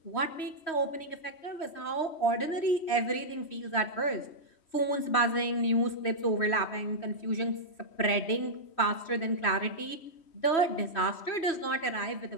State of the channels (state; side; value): late; right; 3.1 ms